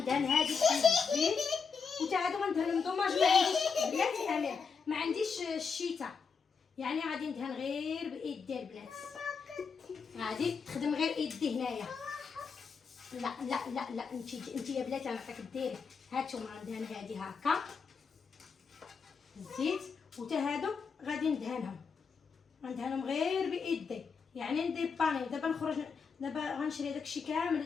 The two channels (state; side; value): quieter; right; 5.6 dB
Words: هادي بالزيت. وتا هادو غندهنهم دوماج. ما عنديش بلاتي امير، ما عنديش الشيتا، يعني غادي ندهن غير بايدي البنات. غادي تخدم غير ايدي هنايا. لا انت يا بلاتي غنعطيك ديري. هانتوما غندهن هادي هكا الزيت. وتا هادو غادي ندهنهم غير بايدي، يعني ندير باني. دابا نخرج دابا غنشري داكشي كامل،